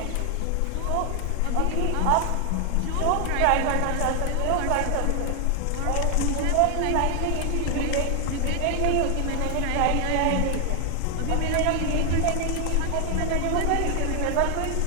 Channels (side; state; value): both; different; correlation 0.00